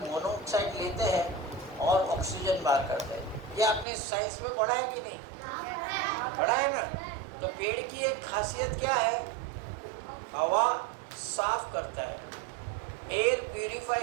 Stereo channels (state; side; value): drops out; left; at 3.9 s